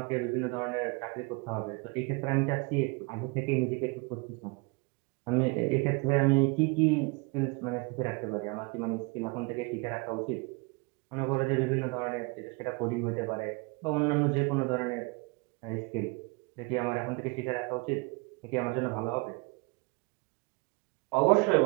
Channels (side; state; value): left; quieter; 29.1 dB